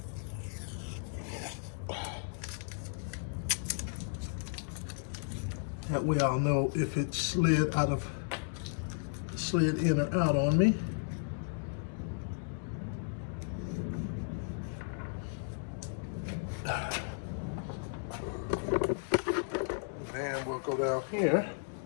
That way I'll know if it slid in or out on me. Then we'll go down here.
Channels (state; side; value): silent; right; digital silence